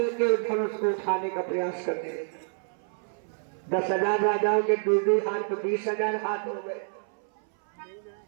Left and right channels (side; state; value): left; silent; 59 dB below the other